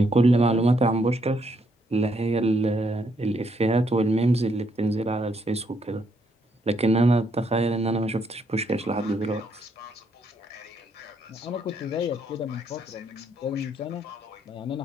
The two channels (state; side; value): normal; both; correlation 0.74